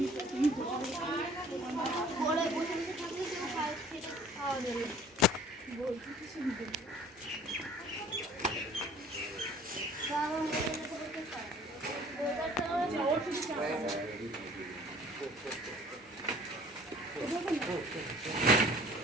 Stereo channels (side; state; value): both; normal; correlation 0.51